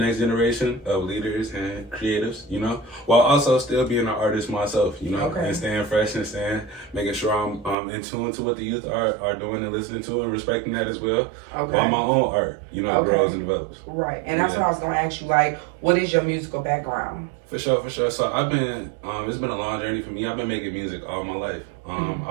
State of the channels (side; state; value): left; drops out; at 7.8 s